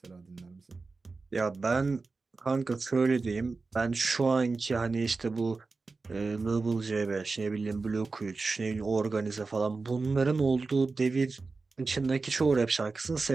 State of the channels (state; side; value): quieter; left; 4.0 dB